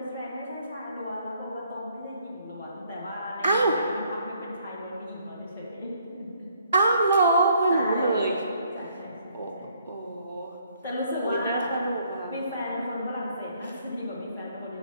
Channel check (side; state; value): both; inverted; correlation -0.66